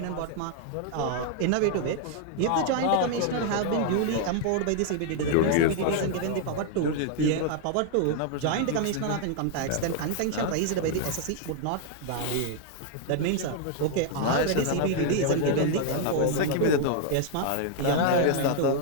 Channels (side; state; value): both; different; correlation 0.00